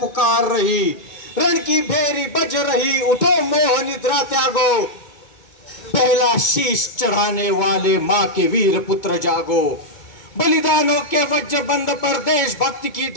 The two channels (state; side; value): late; right; 2.2 ms